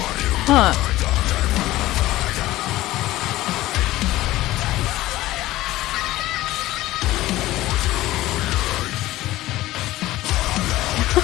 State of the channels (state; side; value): quieter; right; 16.6 dB